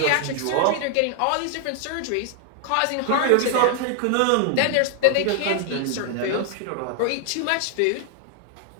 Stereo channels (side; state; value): both; different; correlation 0.00